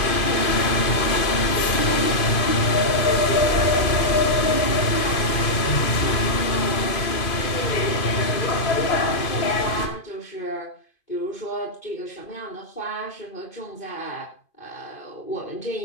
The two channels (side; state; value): right; late; 2.5 ms